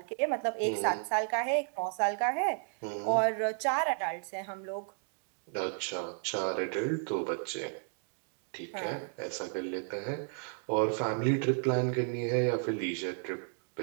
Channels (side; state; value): left; silent; 56 dB below the other